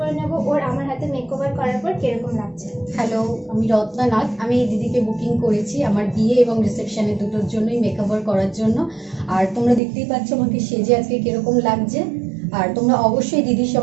নেব ওর আমার হাতে মেকওভার করার পর কিরকম লাগছে। হ্যালো, আমি রত্নানাথ। আমি এই দিদিকে বুকিং করেছি আমার বিয়ে এবং রিসেপশনে দুটোর জন্যই মেকওভার করার জন্য। আর তোমরা দেখতেই পাচ্ছ আমাকে সেজে আজকে কিরকম লাগছে। আর তোমরা অবশ্যই দিদির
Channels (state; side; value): drops out; left; at 9.8 s